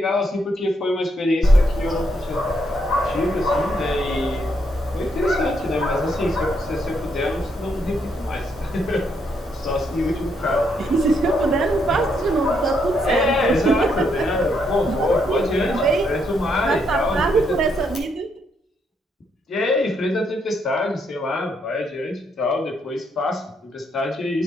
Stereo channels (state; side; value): normal; both; correlation 0.76